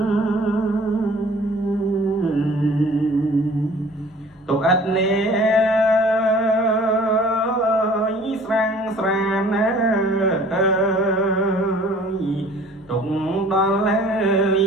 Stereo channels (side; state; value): both; normal; correlation 0.51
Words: ទុកអត់នេស្រាំងស្រានទុកដល់ហើយ